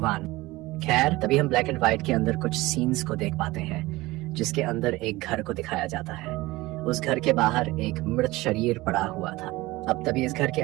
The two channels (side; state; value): left; quieter; 19.7 dB